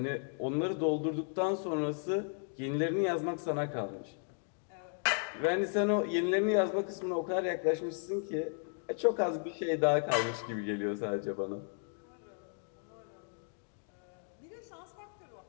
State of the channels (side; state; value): right; silent; 55 dB below the other